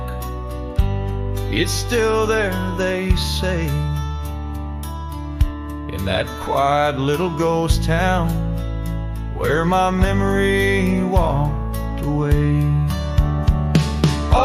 it's still there, they say, in that quiet little ghost town where my memory walked away.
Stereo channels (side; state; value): both; identical; correlation 1.00